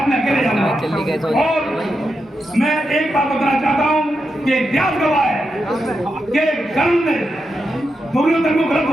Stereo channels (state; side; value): normal; both; correlation 0.86